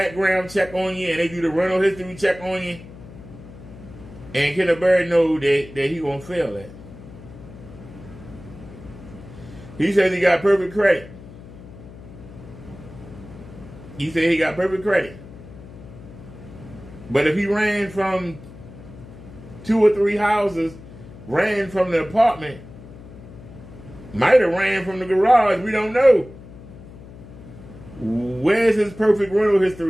check on you, and they do the rental history check on you. And Kenneth Bird know that he gonna fail that. He says he got perfect credit. He said he got perfect credit. But if he ran from 2 or 3 houses, ran from the apartment, might have ran from the garage, we don't know. Where's his perfect rental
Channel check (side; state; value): left; noise; hum, 17 dB below the sound